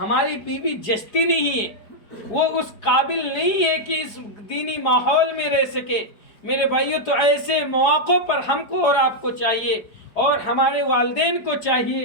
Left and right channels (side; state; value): right; late; 4.9 ms